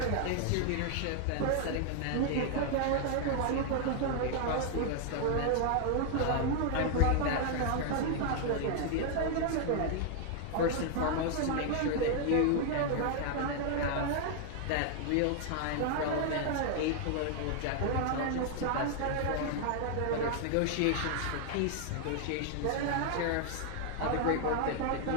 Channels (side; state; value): both; different; correlation 0.00